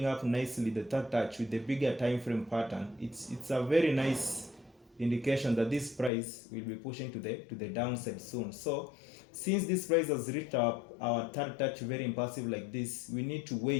up nicely, the third touch with the bigger time frame pattern. It's a very nice indication that this price will be pushing to the downside soon. So since this price has reached our third touch very impulsive like this, we need to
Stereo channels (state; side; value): drops out; right; at 6.1 s